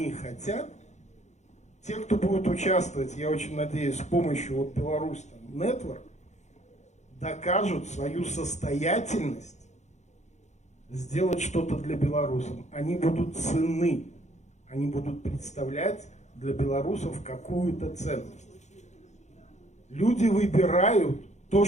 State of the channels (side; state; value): right; late; 0.33 ms